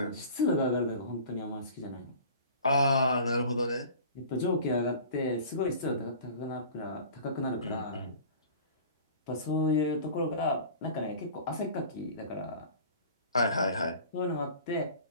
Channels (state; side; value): inverted; both; correlation -0.42